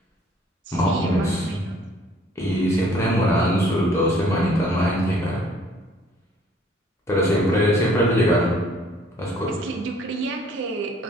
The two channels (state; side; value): normal; both; correlation 0.58